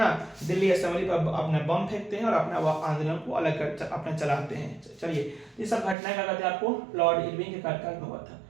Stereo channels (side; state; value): left; drops out; at 6.0 s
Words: दिल्ली असेंबली पर अपने बम फेंकते हैं और अपना आंदोलन को अलग कर अपने चलाते हैं। चलिए ये सब घटनाएं क्या कहते हैं आपको लॉर्ड इरविन के कार्यकाल में हुआ था।